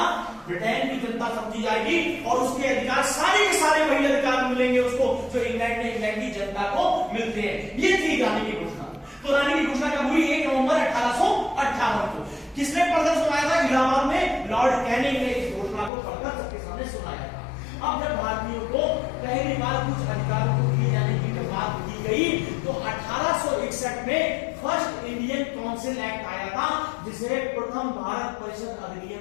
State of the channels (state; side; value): drops out; right; at 15.9 s